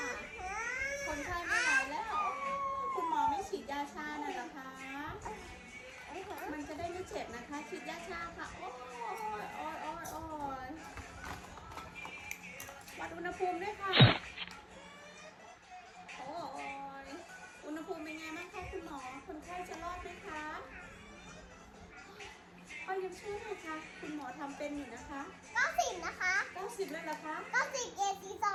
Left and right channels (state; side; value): identical; both; correlation 1.00